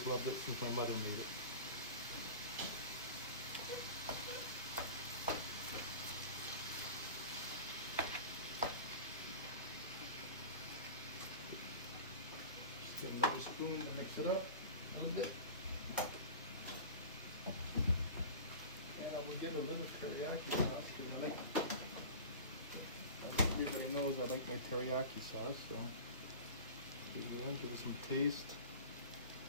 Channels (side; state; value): both; inverted; correlation -0.35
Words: loved it since my mother made it. Get another spoon and mix it up a little bit. Yeah, we get a little teriyaki sauce because I like. Everybody knows I like my teriyaki sauce, so give it some taste.